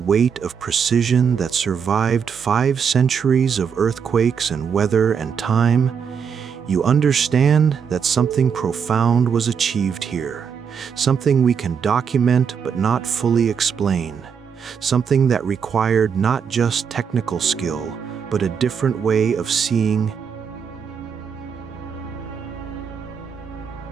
of precision that survived 5 centuries of earthquakes and weather and time, you understand that something profound was achieved here, something we can document but not fully explain, something that required not just technical skill, but a different way of seeing.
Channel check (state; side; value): quieter; left; 6.8 dB